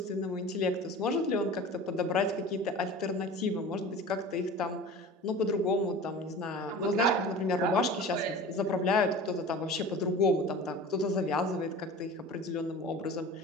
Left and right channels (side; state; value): both; normal; correlation 0.37